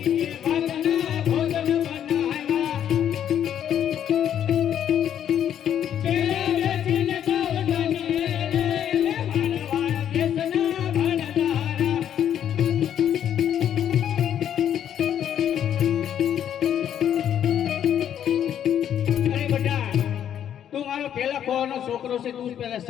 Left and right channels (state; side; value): quieter; right; 9.8 dB